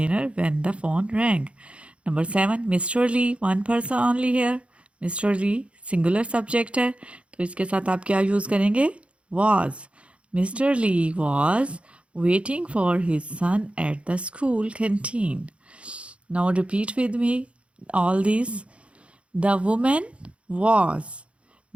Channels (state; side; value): late; left; 0.061 ms